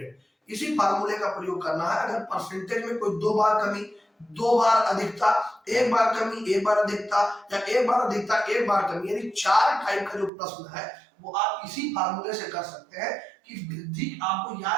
इसी फार्मूले का प्रयोग करना है। अगर परसेंटेज में कोई 2 बार कमी, 2 बार अधिकता, 1 बार कमी, 1 बार अधिकता, या 1 बार अधिकता 1 बार कमी, यानी 4 टाइप का जो प्रश्न है वो आप इसी फार्मूले से कर सकते हैं। कि वृद्धि आपको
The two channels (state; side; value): drops out; left; at 10.3 s